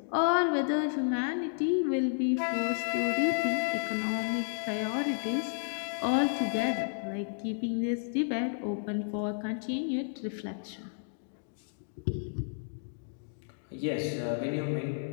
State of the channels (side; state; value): right; silent; digital silence